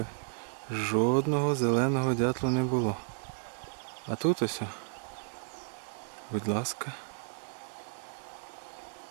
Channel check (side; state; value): left; silent; digital silence